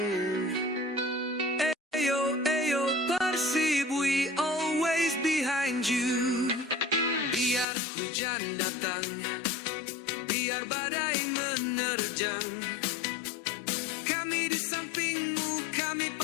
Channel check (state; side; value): drops out; right; at 7.7 s